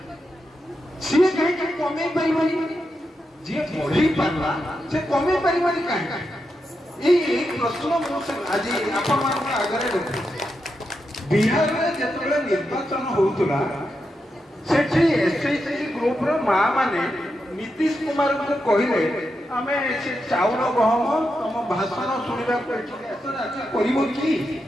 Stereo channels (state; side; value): normal; both; correlation 0.86